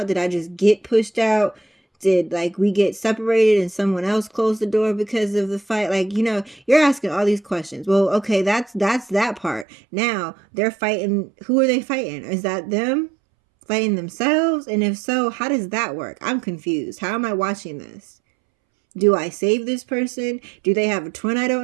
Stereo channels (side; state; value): left; drops out; at 9.7 s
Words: Did I just get pushed out? Did like we get separated and someone else closed the door because of the fight? Like, you know, you're asking all these questions. Well, okay, that's that part. Now they're fighting. Who are they fighting? Is that them fighting themselves? And if so, how does that work? I'm confused. How am I watching this? Do I save this person? Do they have a twin I